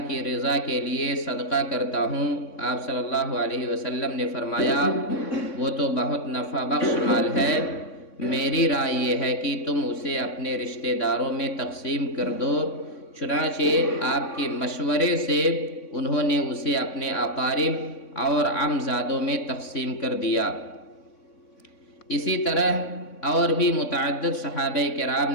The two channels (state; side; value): late; right; 3.6 ms